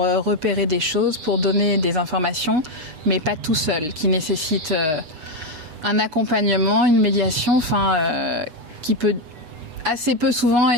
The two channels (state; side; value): late; left; 8.2 ms